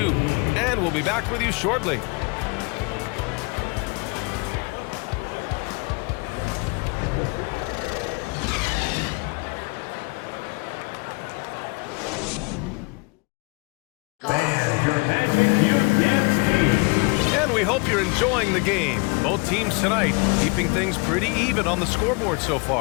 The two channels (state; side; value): quieter; right; 30.1 dB